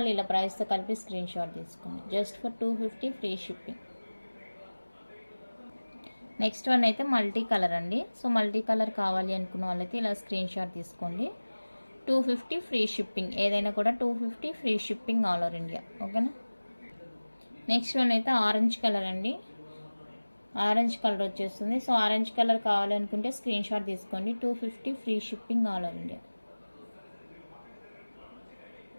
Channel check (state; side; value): inverted; both; correlation -1.00